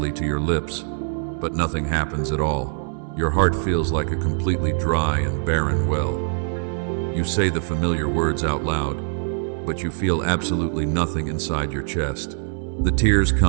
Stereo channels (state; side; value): silent; left; 59 dB below the other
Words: to your lips, but nothing happens at all. Your heart feels like a completely dry and barren well. You say the familiar words out loud, but you feel absolutely nothing inside your chest. The tears